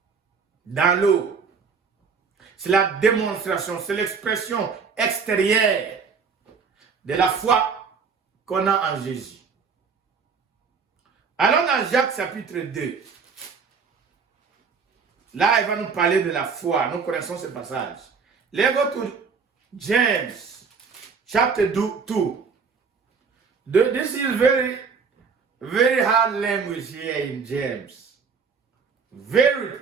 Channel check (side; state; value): left; quieter; 5.6 dB